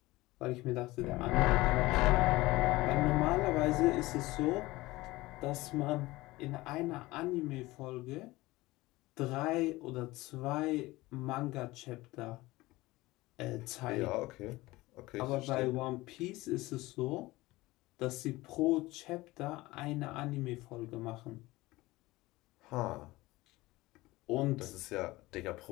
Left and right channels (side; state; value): right; quieter; 19.8 dB